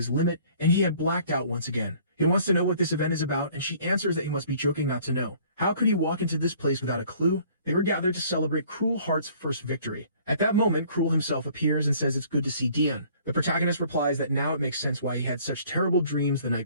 limit, and he had blacked out once again. He wants to know what this event is about, and she answers that he must be joking not to know. How could he walk into this place without a clue? They were gathered to celebrate Cruel Heart's first victory. At that moment, Cruel himself appears and says it's good to see Dion. The protagonist replies that now it makes sense why he had such terrible dreams the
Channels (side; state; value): both; inverted; correlation -0.56